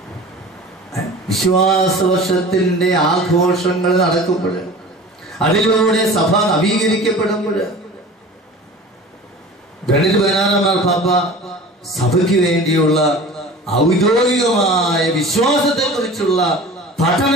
വിശ്വാസ വർഷത്തിന്റെ ആഘോഷങ്ങൾ നടക്കുമ്പോൾ, അതിലൂടെ സഭ നവീകരിക്കപ്പെടുമ്പോൾ ബെനഡിക്ട് 16 മാർപ്പാപ്പ സഭയ്ക്ക് വേണ്ടിയുള്ള ഔദ്യോഗികമായ വിശ്വാസത്തെ കുറിച്ചുള്ള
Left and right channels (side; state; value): both; normal; correlation 0.39